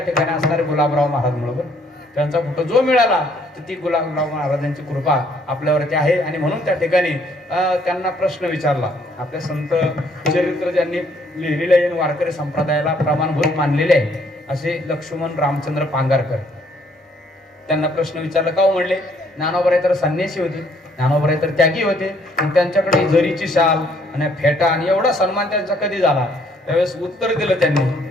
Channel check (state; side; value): normal; both; correlation 0.65